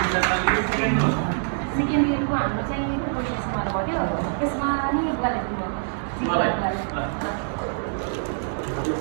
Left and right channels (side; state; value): left; silent; digital silence